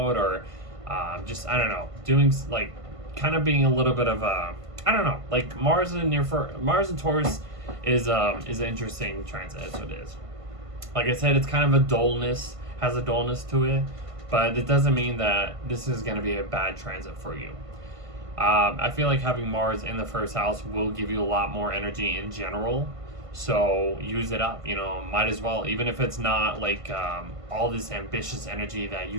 or just, I don't know, doing like kind of being a little bit of a, I don't know, like Mars and Taurus is an interesting transit. That's what it is. Like I said, it's kind of has a dullness to it, but it doesn't mean that this is going to be a bad transit for you. I feel like having Mars in the first house will give you a lot more energy in general. So use it up, might as well, even if it's not like all this ambitious energy that you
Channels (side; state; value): left; late; 1.5 ms